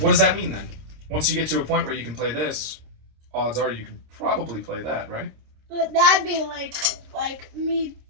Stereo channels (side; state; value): left; late; 26 ms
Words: what does that mean then? Once you get to a point where you can play this, odds are you can probably play that, right? But that'd be like me